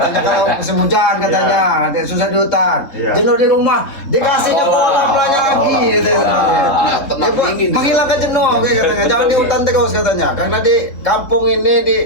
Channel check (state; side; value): late; right; 3.7 ms